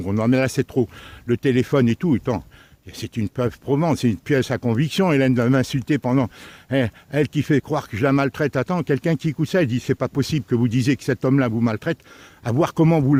Non, mais là c'est trop. Le téléphone et tout, tant. C'est une preuve probante, c'est une pièce à conviction. Hélène va m'insulter pendant... Elle qui fait croire que je la maltraite. Attends, quelqu'un qui écoute ça, elle dit, c'est pas possible que vous disiez que cet homme-là vous maltraite. À voir comment vous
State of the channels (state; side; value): identical; both; correlation 1.00